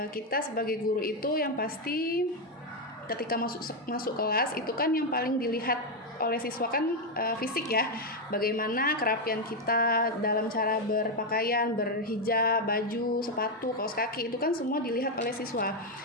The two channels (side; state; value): both; normal; correlation 0.04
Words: Kita sebagai guru itu yang pasti ketika masuk kelas itu kan yang paling dilihat oleh siswa kan fisik ya, bagaimana kerapian kita dalam cara berpakaian, berhijab, baju, sepatu, kaos kaki, itu kan semua dilihat oleh siswa.